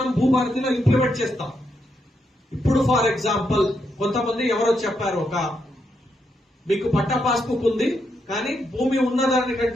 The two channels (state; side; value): normal; both; correlation 0.80